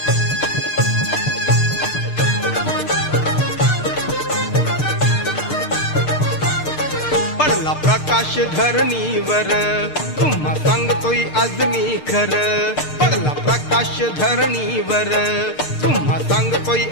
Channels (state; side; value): late; right; 6.6 ms